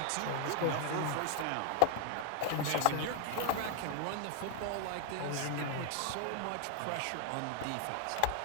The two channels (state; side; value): different; both; correlation 0.00